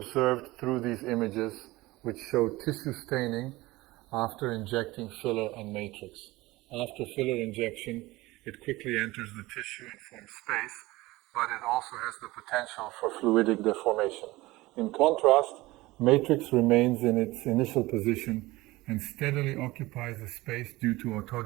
through these images, which show tissue staining after injecting filler and matrix. After filler injection, it quickly enters the tissue and forms space, but it also has the potential for fluidic deformation. In contrast, matrix remains in its initial position and steadily occupies the space due to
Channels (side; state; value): left; quieter; 19.8 dB